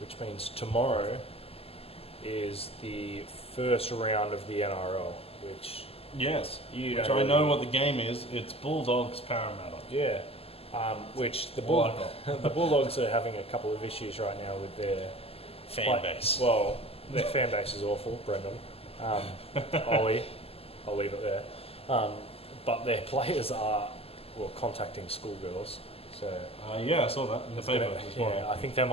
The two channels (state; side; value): late; right; 0.29 ms